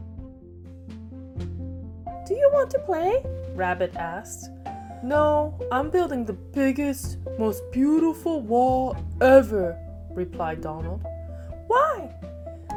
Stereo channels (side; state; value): both; identical; correlation 1.00